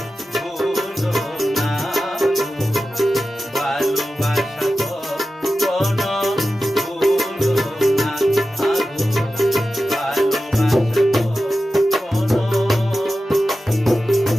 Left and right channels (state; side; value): normal; both; correlation 0.93